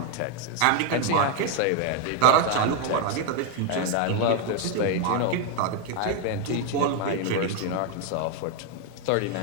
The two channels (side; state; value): both; different; correlation 0.01